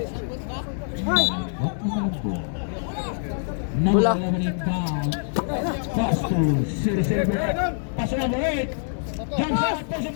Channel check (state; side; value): silent; right; digital silence